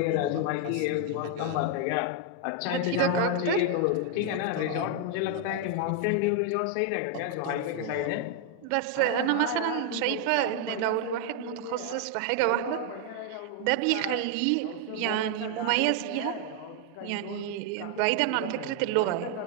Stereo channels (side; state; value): both; different; correlation 0.00